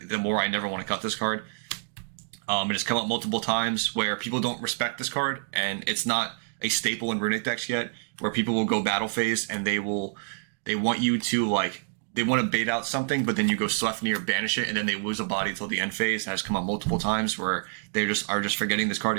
more I never want to cut this card. It has come up multiple times where people don't respect this card, and it's not a staple in Runick decks yet, where people will go battle phase and they want you to they want to bait out something, but then you go Sleipnir, banish it, and then they lose a body till the end phase. That has come up multiple times where they are just forgetting this card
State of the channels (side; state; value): left; silent; digital silence